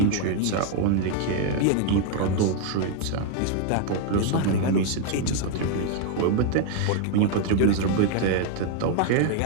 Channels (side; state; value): both; different; correlation 0.00